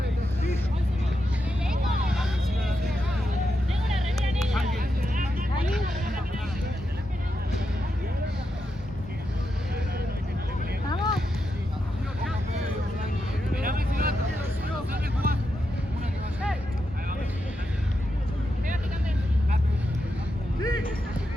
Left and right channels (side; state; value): both; normal; correlation 0.86